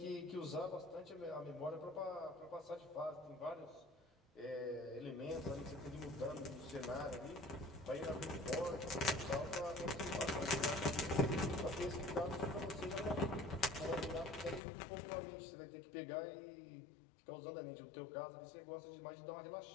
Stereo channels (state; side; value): drops out; right; at 14.6 s